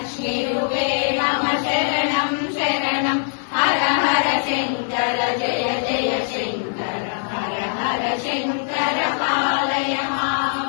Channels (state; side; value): silent; right; digital silence